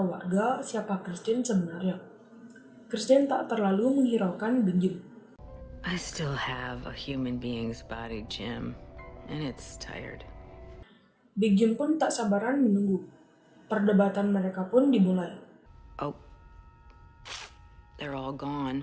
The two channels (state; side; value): identical; both; correlation 1.00